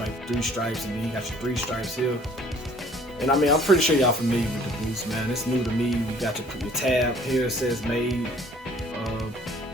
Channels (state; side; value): normal; both; correlation 0.55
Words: 3 stripes, and then you got your 3 stripes here. And I mean, I'm pretty sure y'all familiar with the boost, man. It's new to me. You got your tab here. It says made